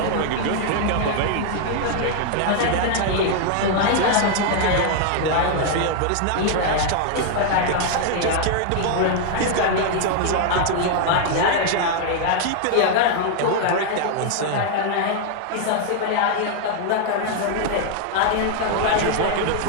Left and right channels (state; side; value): different; both; correlation 0.00